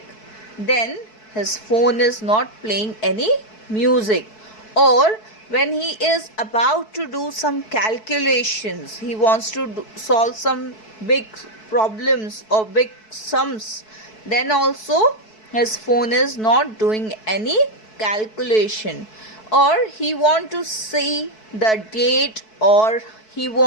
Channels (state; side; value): late; right; 4.6 ms